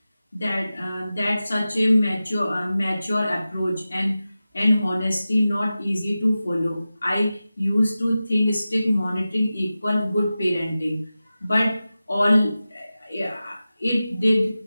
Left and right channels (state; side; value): inverted; both; correlation -0.95